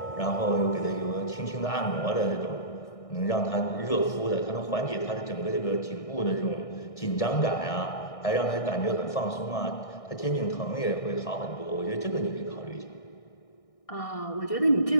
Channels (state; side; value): late; right; 1.6 ms